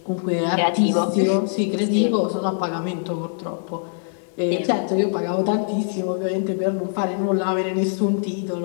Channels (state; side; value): silent; right; 64 dB below the other